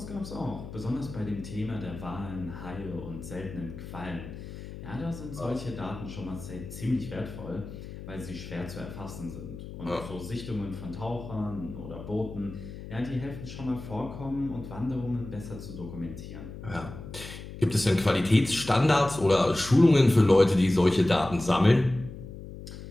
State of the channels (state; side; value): noise; left; hum, 12 dB below the sound